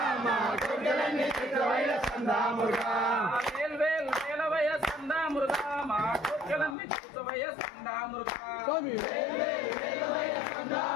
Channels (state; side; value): drops out; right; at 6.8 s